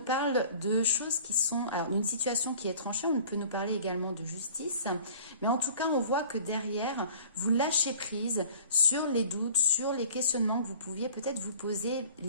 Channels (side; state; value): both; inverted; correlation -0.48